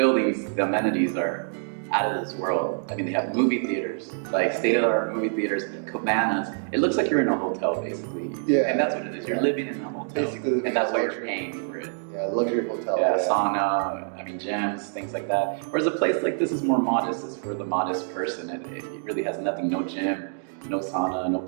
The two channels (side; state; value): left; silent; digital silence